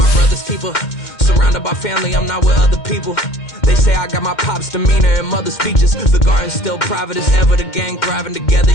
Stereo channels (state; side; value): late; right; 2.1 ms